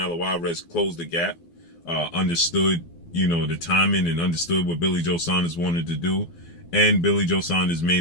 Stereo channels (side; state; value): right; late; 12 ms